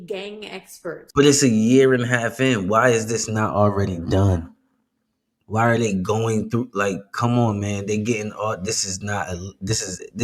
gang experts, but it's a year and a half in. Why is this not already done? Why are they going through? Like, come on, man. They getting all. This got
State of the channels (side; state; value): both; identical; correlation 1.00